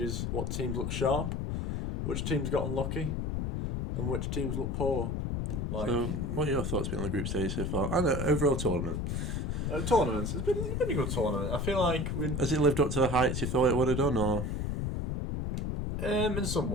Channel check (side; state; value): left; noise; rumble, 1 dB below the sound